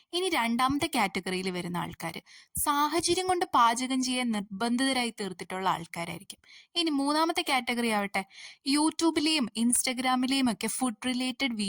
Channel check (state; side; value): identical; both; correlation 1.00